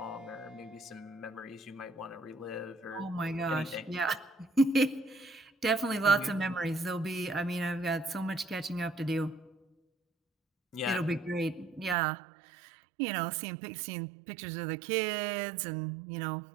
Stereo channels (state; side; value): drops out; left; at 12.0 s